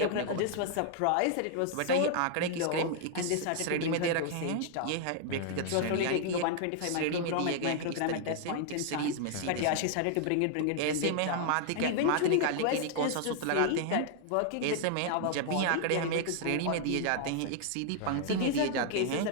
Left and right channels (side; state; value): both; different; correlation 0.00